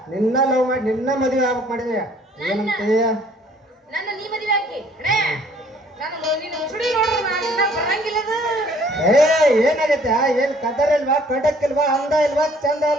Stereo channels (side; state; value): both; normal; correlation 0.59